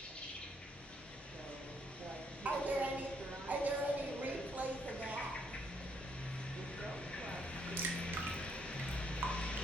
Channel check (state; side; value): normal; both; correlation 0.72